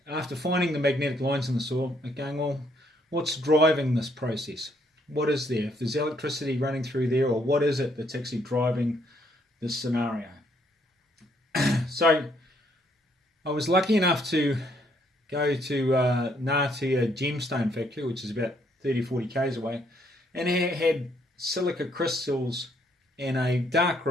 after finding the magnetic lines in the soil, I'm going, well, what's driving this process? What is there? If there's electricity running through there, or what is it that's actually driving this scenario? So I was lucky enough to go to Ngatea Gemstone Factory, which is about 30-40 k's away, and it had silica crystals in a dark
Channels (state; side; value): normal; both; correlation 0.70